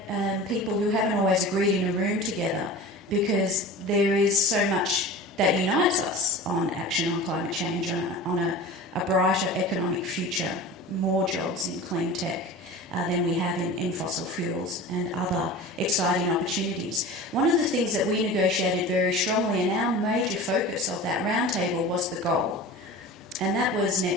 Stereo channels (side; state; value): both; normal; correlation 0.35